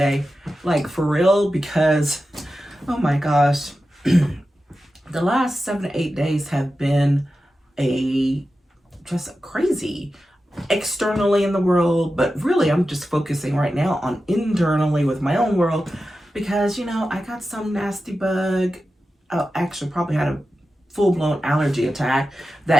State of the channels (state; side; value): normal; both; correlation 0.92